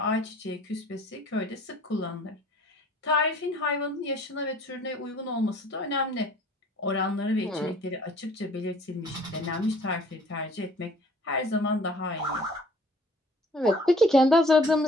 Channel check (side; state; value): both; normal; correlation 0.53